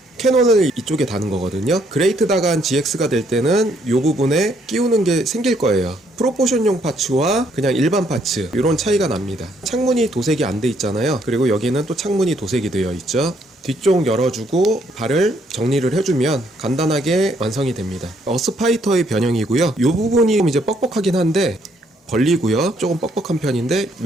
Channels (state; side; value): normal; both; correlation 0.70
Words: 캐논을 이쪽에 다는 거거든요. 그레이트 다간 GX가 될 때는 이 부분에 끼우는 게 생길 거예요. 프로포션용 파츠와 그냥 일반 파츠, 이런 차이가 납니다. 창문이 도색이 안 돼 있잖아요. 그리고 여기는 또 창문이 도색이 되어 있죠. 뒤쪽 열어주고 발을 정리를 해주면 간단하게 완성이 됩니다. 어스파이터의 변형이고요. 이 부분이 이제 뻑뻑하긴 한데 벌리고요. 조금 뻑뻑한 편인데